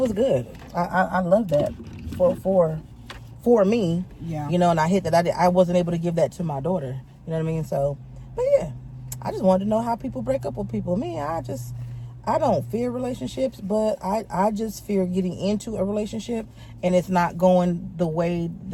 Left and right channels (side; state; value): both; identical; correlation 1.00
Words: good. I love that for me. Yeah. And I hate that I wasn't able to give that to my daughter. You know what I mean? So, but yeah, I just wanted to know how people break up with people. Me, I don't fear relationships, but I just fear getting into a relationship and it's not going the way